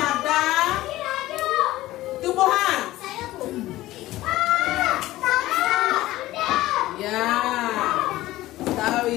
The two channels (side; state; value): right; quieter; 16.5 dB